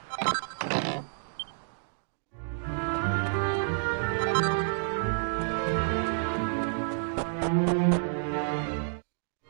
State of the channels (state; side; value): silent; left; digital silence